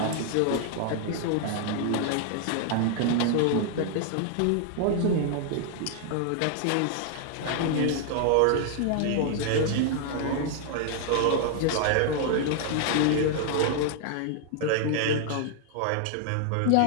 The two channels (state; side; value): different; both; correlation 0.00